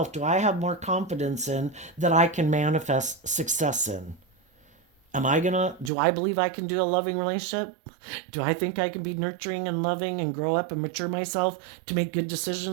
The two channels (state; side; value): drops out; left; at 5.9 s